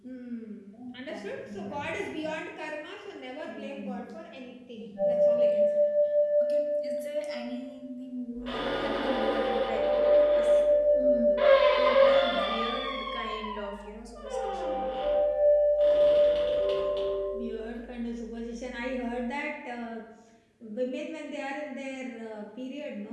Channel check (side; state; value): both; identical; correlation 1.00